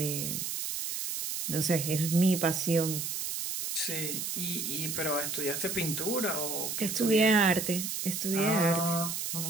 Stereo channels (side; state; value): right; noise; hiss, 3 dB below the sound